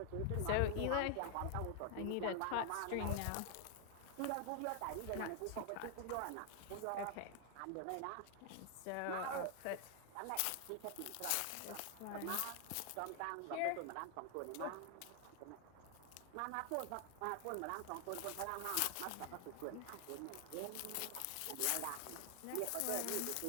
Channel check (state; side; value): different; both; correlation 0.00